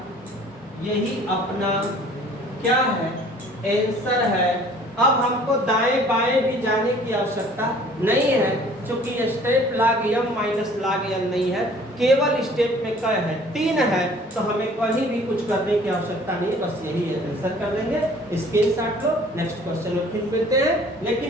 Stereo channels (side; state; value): both; normal; correlation 0.52